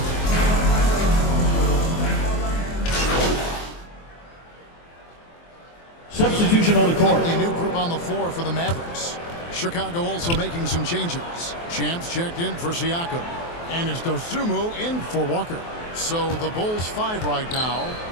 Substitution on the court. Completely new group on the floor for the Mavericks. Chicago also making some changes. Champs checked in for Siakam. And it's Dosunmu in for Walker. So the Bulls 5 right now.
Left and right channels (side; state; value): right; late; 23 ms